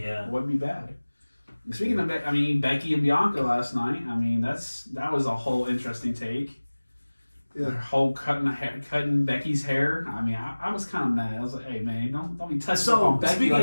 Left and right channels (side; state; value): both; inverted; correlation -1.00